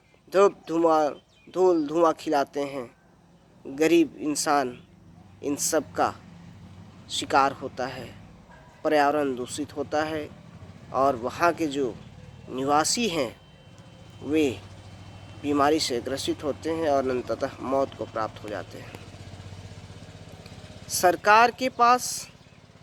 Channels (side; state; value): both; identical; correlation 1.00